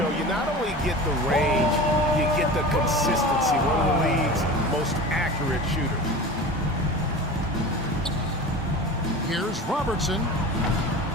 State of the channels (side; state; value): both; normal; correlation 0.34